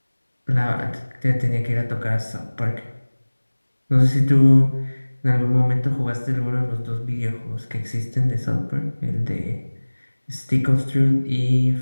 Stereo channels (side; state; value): both; inverted; correlation -1.00